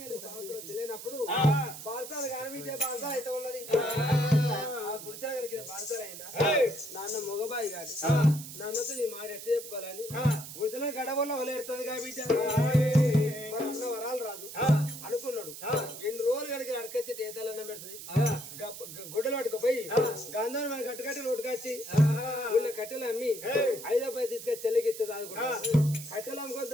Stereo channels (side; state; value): right; noise; hiss, 11 dB below the sound